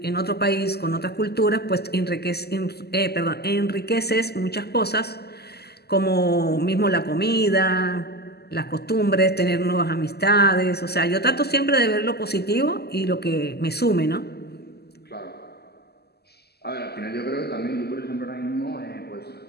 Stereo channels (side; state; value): right; late; 0.47 ms